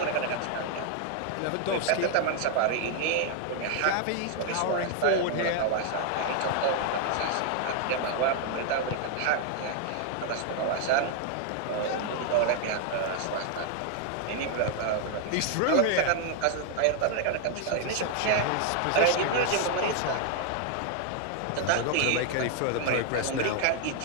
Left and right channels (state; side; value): different; both; correlation 0.00